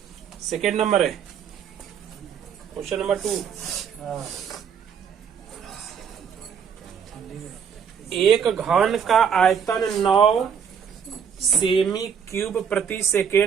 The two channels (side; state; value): left; quieter; 7.4 dB